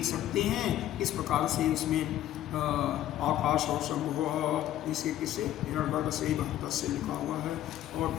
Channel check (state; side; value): quieter; right; 12.7 dB